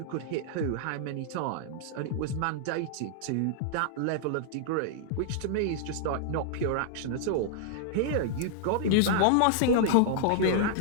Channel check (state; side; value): different; both; correlation -0.01